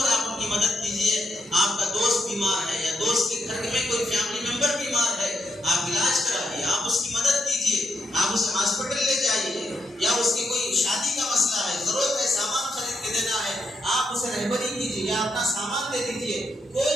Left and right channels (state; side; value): normal; both; correlation 0.81